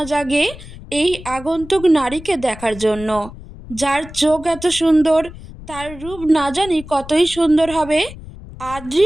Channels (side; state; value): left; noise; rumble, 15 dB below the sound